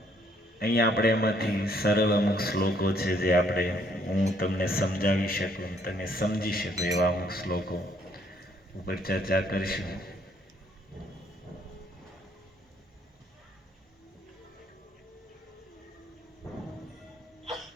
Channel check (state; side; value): normal; both; correlation 0.66